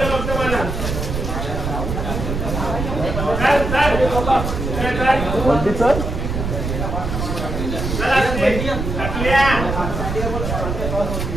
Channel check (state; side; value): noise; right; rumble, 3 dB below the sound